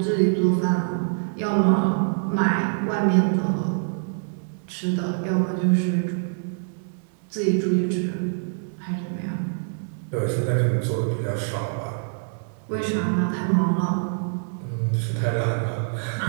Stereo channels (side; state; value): left; silent; digital silence